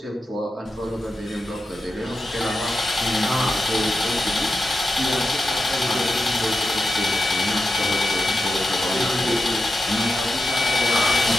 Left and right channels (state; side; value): normal; both; correlation 0.89